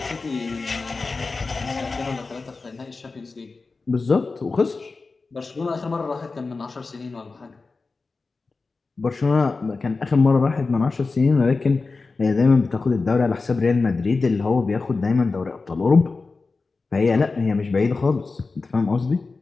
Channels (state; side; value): quieter; right; 4.0 dB